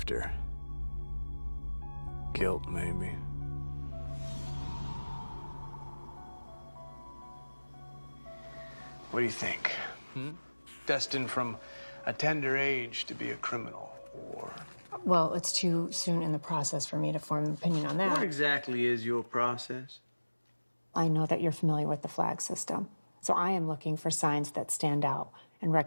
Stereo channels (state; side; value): inverted; both; correlation -1.00